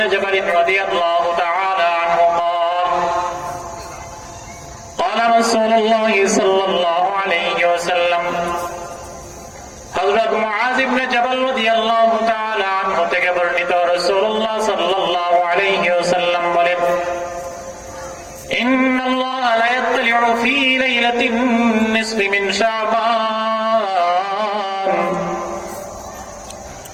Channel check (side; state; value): both; identical; correlation 1.00